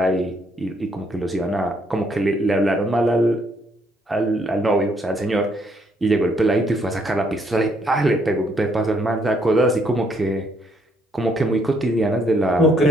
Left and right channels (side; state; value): both; normal; correlation 0.70